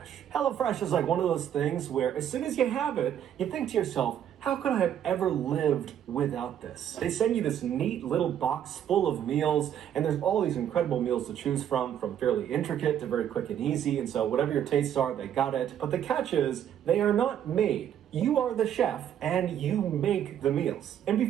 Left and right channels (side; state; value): left; quieter; 9.9 dB